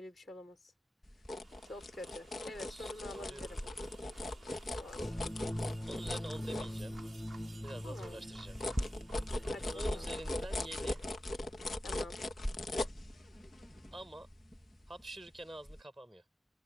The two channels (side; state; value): both; normal; correlation 0.93